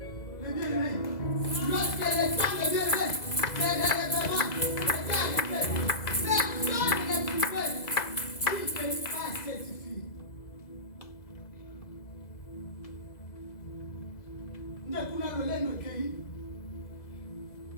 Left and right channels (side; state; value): right; late; 2.0 ms